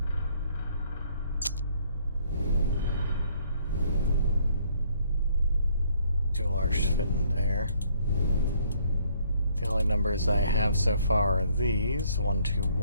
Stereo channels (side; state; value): both; inverted; correlation -0.65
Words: Too large to fit in there. The only numbers I have so far are these. 1, 2,